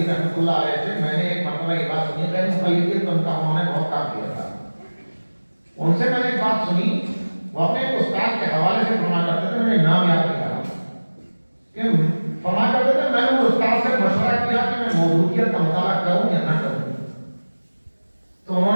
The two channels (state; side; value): inverted; both; correlation -1.00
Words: رحمۃ اللہ علیہ سے میں نے ایک مرتبہ یہ بات سنی، غیر مقلدیت ان کا انہوں نے بہت کام کیا تھا. ان سے میں نے ایک بات سنی، وہ اپنے ایک استاد کے حوالے سے فرمایا کرتے تھے، میں نے نام یاد نہیں رہا کہ فرمایا کرتے تھے، میں نے وہ استاد سے مشورہ کیا کہ میں موضوعیت کا مطالعہ کروں یا نہ کروں. تو انہوں